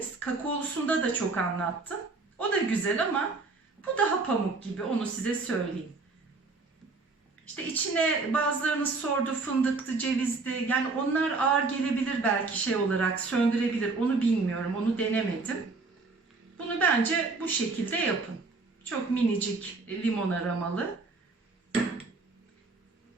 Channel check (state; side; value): quieter; left; 3.9 dB